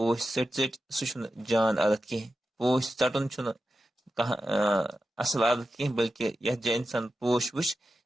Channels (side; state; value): both; normal; correlation 0.91